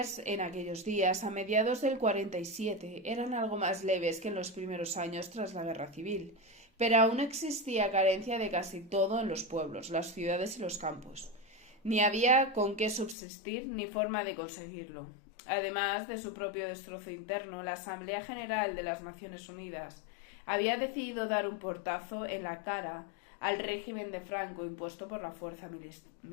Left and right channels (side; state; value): right; drops out; at 13.2 s